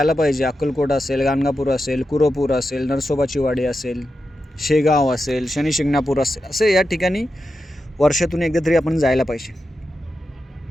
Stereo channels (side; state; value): both; normal; correlation 0.89